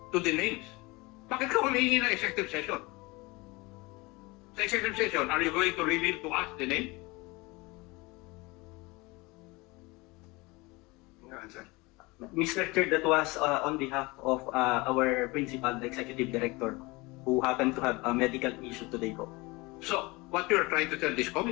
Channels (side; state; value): right; quieter; 24.1 dB